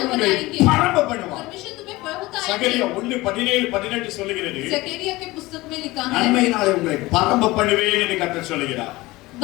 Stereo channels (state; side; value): quieter; right; 20.1 dB